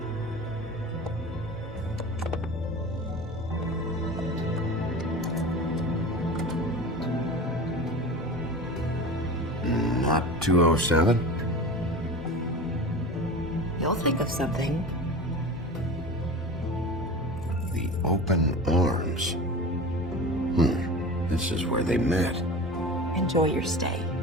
Not 207? You'll think of something. The open arms. This is where they met. Enjoy your stay.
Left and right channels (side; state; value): both; normal; correlation 0.33